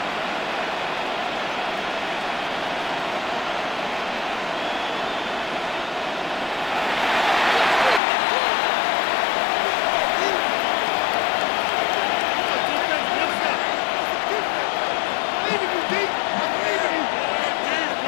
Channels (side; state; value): right; drops out; at 8.0 s